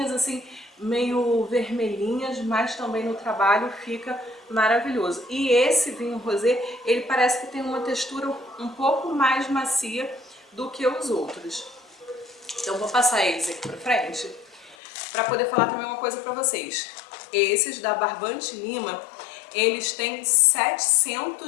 assim, meio vermelhinhas, mas também no trabalho fica maravilhoso. E esse vinho rosé, ele parece que tem uma textura um pouco mais macia do que os outros. Então vou passar eles aqui pra frente, para poder falar também uma coisa para vocês. Esses da Barbante Lima, eles têm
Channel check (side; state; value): right; drops out; at 14.8 s